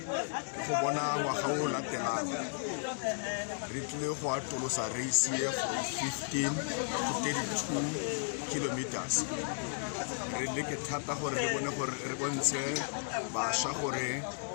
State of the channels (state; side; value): silent; right; digital silence